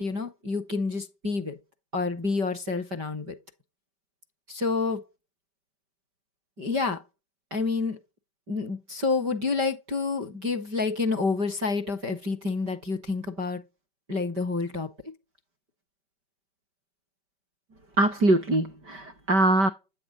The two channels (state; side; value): late; left; 5.1 ms